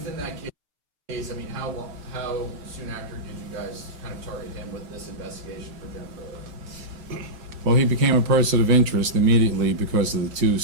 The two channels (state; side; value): late; left; 6.6 ms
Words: that case, I mean, how soon after did you guys kind of target him with this investigation for Jennifer Odom? Well, he became a person of interest immediately because of the two